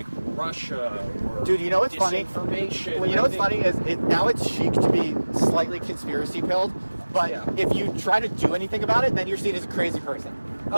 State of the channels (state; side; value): inverted; both; correlation -1.00